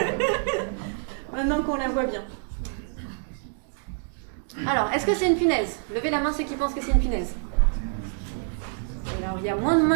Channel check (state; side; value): silent; left; 61 dB below the other